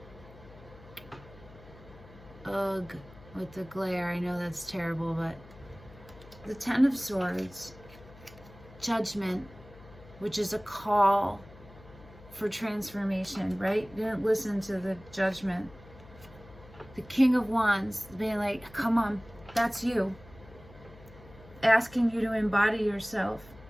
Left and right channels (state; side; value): noise; left; hum, 20 dB below the sound